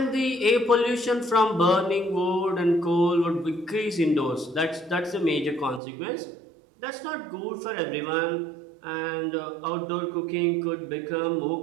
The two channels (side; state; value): left; drops out; at 5.8 s